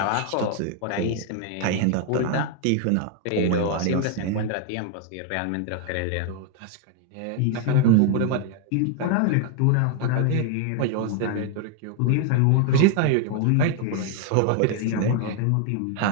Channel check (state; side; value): different; both; correlation 0.00